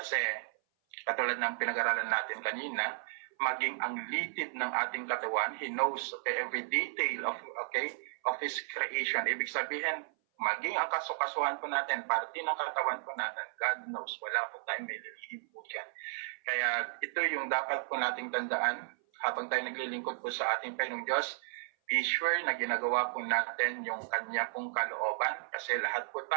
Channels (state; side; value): silent; left; 55 dB below the other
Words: Kasi katulad ng pinag-aralan natin kanina, maging ang litid ng ating katawan, He knows every detail of His creation. Ibig sabihin, maging ang kasukasuhan po natin, parte ng katawan po natin, God knows, wala po tayong may lilihim po dyan. Kaya ito yung dapat po nating tandaan habang tayo naglilingkod po sa ating Panginoong Diyos. Be sure na ginagawa po natin yung Kanya pong kalooban kasi lahat po